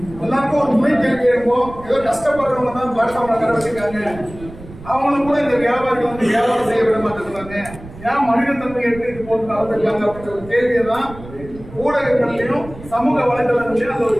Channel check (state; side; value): noise; right; rumble, 16 dB below the sound